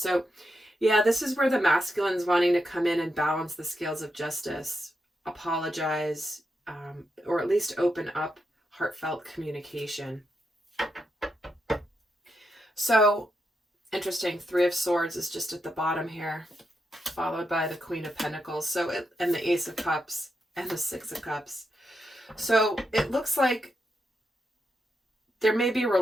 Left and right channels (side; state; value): both; normal; correlation 0.85